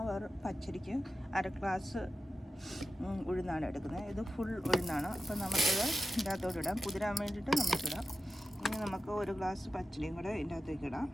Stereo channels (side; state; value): both; normal; correlation 0.92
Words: പച്ചരിക്ക് അര ഗ്ലാസ് ഉഴുന്നാണ് എടുക്കുന്നത്. ഇത് ഫുൾ ഉഴുന്നാണ്. അപ്പോൾ നമുക്കത് ഇതിൻ്റെ അകത്തോട്ട് ഇടാം. കുതിരാൻ വേണ്ടിയിട്ട് നമുക്കിടാം. ഇനി നമുക്ക് ഒരു ഗ്ലാസ് പച്ചരിയും കൂടെ ഇതിൻ്റെ അകത്തേക്ക് ഇടാം.